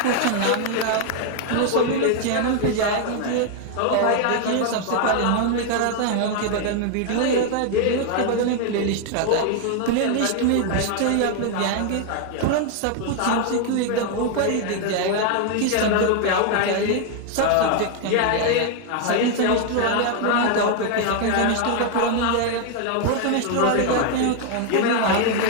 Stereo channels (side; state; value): both; different; correlation 0.00